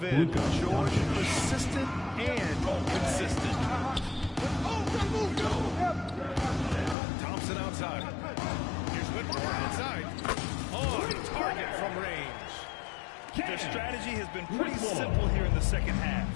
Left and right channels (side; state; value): right; drops out; at 7.0 s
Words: end, George persistent and consistent. Thompson outside. Here's Whitmore outside. On target from range. Their strategy has been pretty simple here in the second half.